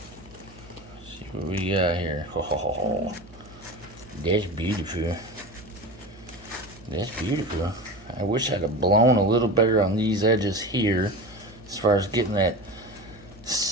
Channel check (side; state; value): right; noise; hum, 22 dB below the sound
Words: See what we got here. Oh, that's beautiful. That's beautiful. I wish I'd have blown a little better on these edges here as far as getting that